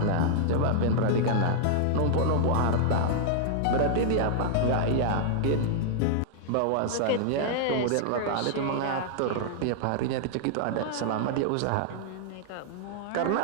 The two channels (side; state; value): both; different; correlation -0.01